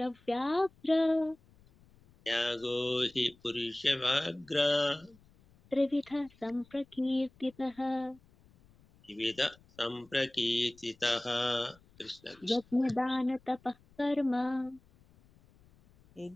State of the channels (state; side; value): noise; left; rumble, 29 dB below the sound